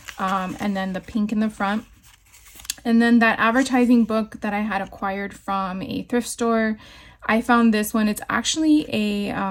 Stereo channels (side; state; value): both; identical; correlation 1.00